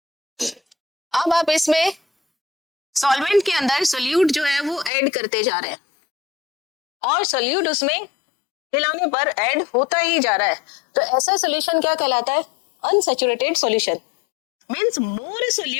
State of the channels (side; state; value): right; drops out; at 4.9 s